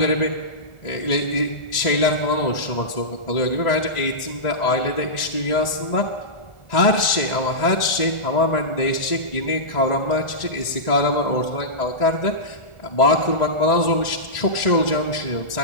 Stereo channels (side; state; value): right; late; 1.4 ms